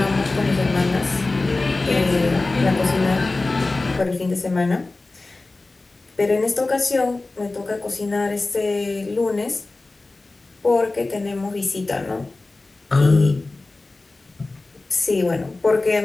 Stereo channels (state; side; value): quieter; right; 3.3 dB